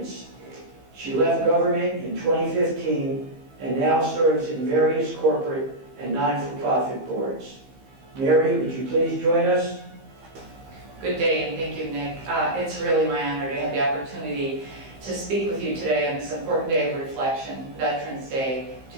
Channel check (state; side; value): late; left; 15 ms